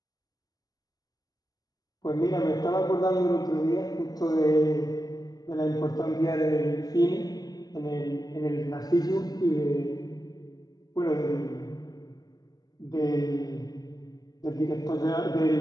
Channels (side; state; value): right; late; 0.19 ms